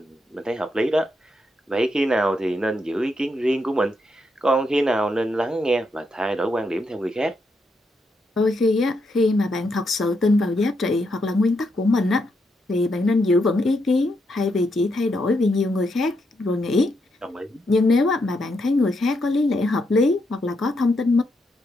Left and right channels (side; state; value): both; normal; correlation 0.80